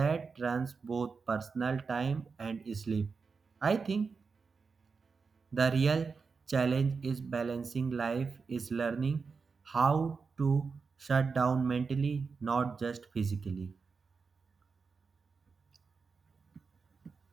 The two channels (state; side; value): quieter; left; 5.0 dB